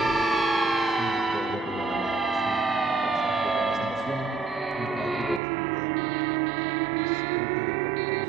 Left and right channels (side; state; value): left; drops out; at 5.4 s